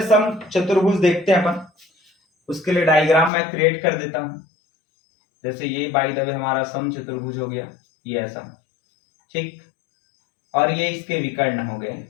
समचतुर्भुज देखते हैं अपन। उसके लिए डायग्राम मैं क्रिएट कर देता हूं। जैसे ये बाय द वे हमारा समचतुर्भुज हो गया, ये ऐसा, ठीक, और ये इसके विकर्ण हो गए।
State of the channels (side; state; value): right; drops out; at 3.3 s